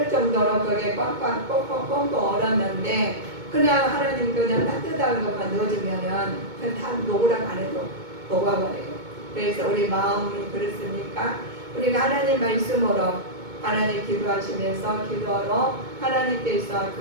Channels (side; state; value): left; late; 2.2 ms